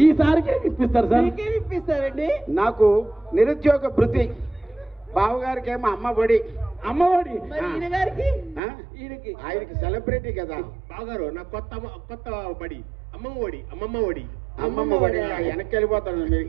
ఈసారికి ఇప్పిస్తారు సార్. ఇప్పిస్తారండి. నాకు నిరుద్యోగ భృతి, బావగారికి ఏమో అమ్మఒడి. అమ్మఒడి ఆయనకి సెలబ్రిటీ కదా బావగారు. నాకు కొత్త బడి అమ్మమ్మ ఒడి. అమ్మమ్మ ఒడి వెనక్కి వెళ్ళిపోతాను,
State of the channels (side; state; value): left; drops out; at 8.6 s